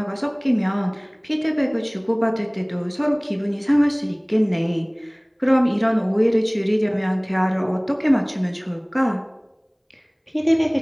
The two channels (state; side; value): identical; both; correlation 1.00